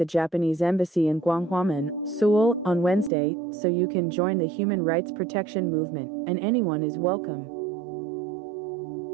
Japanese embassy in Gwanghwamun, Seoul, on Wednesday, so you can join the human rights protection movement, and anyone is welcome.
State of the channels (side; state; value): left; drops out; at 3.1 s